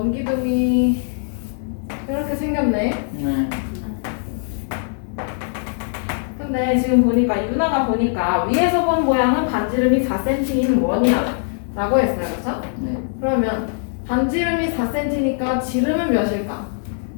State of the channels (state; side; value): silent; right; digital silence